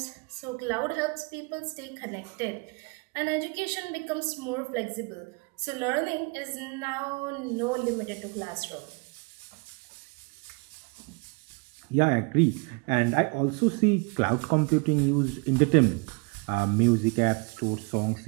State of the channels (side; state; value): left; quieter; 31.1 dB